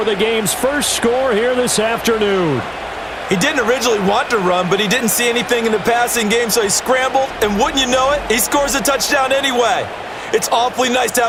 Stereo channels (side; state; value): both; identical; correlation 1.00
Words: the game's first score here this afternoon. He didn't originally want to run, but he didn't see anything in the passing game, so he scrambled. And wouldn't you know it, he scores a touchdown anyway. It's awfully nice to